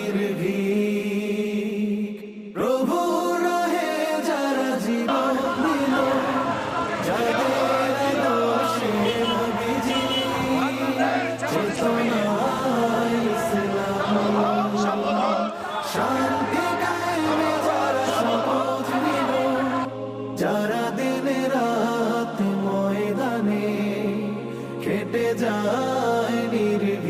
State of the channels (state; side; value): identical; both; correlation 1.00